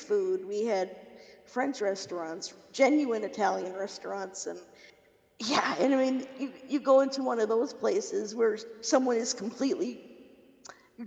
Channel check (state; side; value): identical; both; correlation 1.00